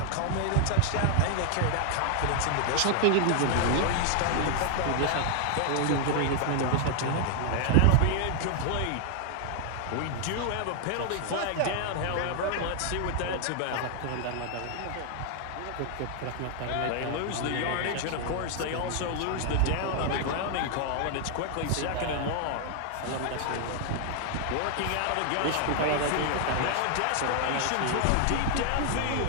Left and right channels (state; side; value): different; both; correlation 0.00